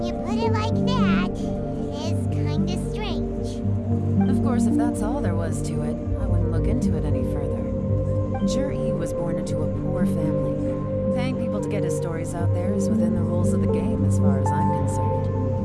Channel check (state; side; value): identical; both; correlation 1.00